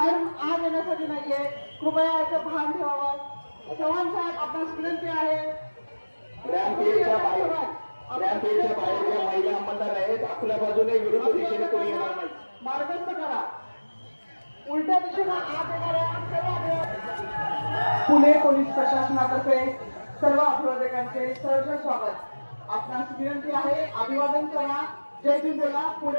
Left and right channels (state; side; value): inverted; both; correlation -1.00